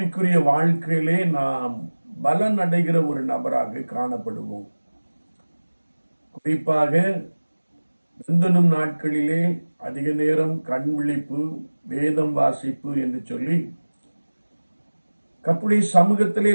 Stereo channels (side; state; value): both; inverted; correlation -1.00